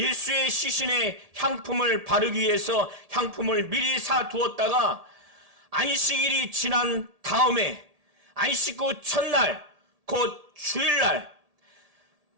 시신에 향품을 바르기 위해서 향품을 미리 사두었다가 안식일이 지난 다음에 안식 후 첫날 곧 주일날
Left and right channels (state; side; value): late; left; 1.7 ms